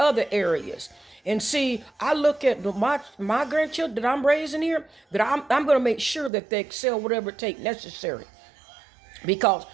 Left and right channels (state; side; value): drops out; left; at 6.3 s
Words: areas. And see, I look at my grandchildren that I'm raising here, that I'm going to make sure that they excel whatever it take necessary. Because